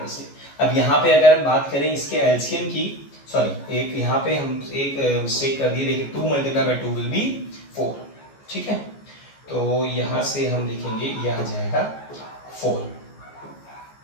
से। अब यहाँ पे अगर हम बात करें इसके एलसीएम की, सॉरी एक यहाँ पे हम एक मिस्टेक कर दिए, देखिए 2 मल्टीप्लाई बाय 2 विल बी 4। ठीक है, तो यहाँ से हम लिखेंगे यह आ जाएगा 4।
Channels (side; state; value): right; late; 14 ms